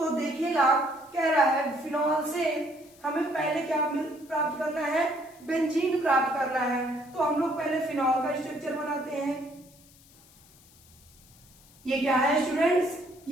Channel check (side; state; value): left; noise; hiss, 26 dB below the sound